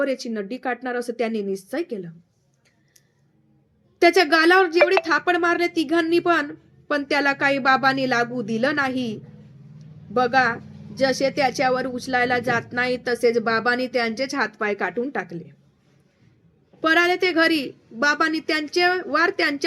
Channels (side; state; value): both; identical; correlation 1.00